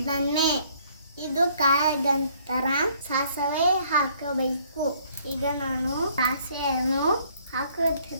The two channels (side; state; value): both; inverted; correlation -0.63